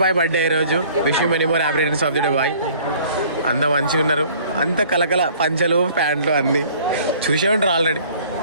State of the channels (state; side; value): inverted; both; correlation -0.53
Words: బాయ్ బర్త్డే ఈ రోజు. Wish you many more happy returns of the day boy. అంతా మంచిగా ఉన్నారు. అంత కలకల పంచలు ప్యాంట్లు అన్నీ చూసే ఉంటారు ఆల్రెడీ.